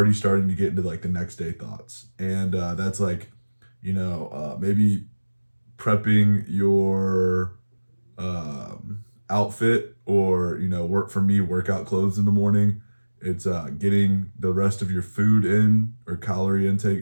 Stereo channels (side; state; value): both; inverted; correlation -1.00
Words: starting to get into like the next day thoughts, and that's like, maybe prepping your outfit, or work for me workout clothes in the morning. It's getting the rest of your food in or calorie